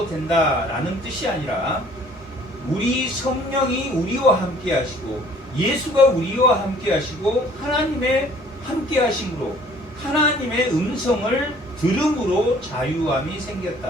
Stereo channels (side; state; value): both; normal; correlation 0.55